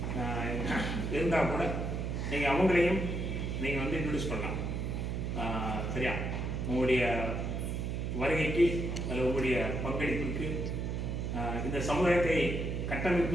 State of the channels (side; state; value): right; noise; hum, 2 dB below the sound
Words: இருந்தால் கூட நீங்கள் அவங்களையும் நீங்கள் வந்து இன்ட்ரடியூஸ் பண்ணலாம். சரியா? உங்களுடைய வருகைக்கு அல்லது உங்களுடைய பங்களிப்புக்கு இந்த சமுதாயத்தை